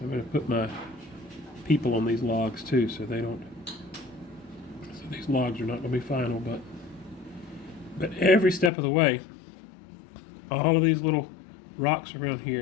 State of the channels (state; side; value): drops out; right; at 8.7 s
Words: going to put my people on these logs too, so they don't. So these logs are not going to be final, but every step of the way, all of these little rocks around